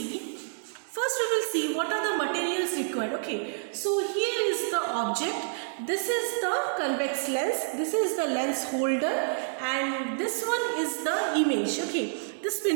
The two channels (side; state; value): left; silent; 59 dB below the other